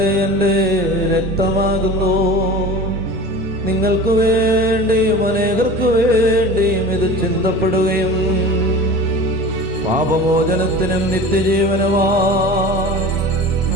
എൻ്റെ രക്തമാകുന്നു. നിങ്ങൾക്ക് വേണ്ടിയും അനേകർക്ക് വേണ്ടിയും ഇത് ചിന്തപ്പെടുകയും പാപമോചനത്തിനും നിത്യജീവനുമായി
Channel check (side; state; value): left; noise; rumble, 19 dB below the sound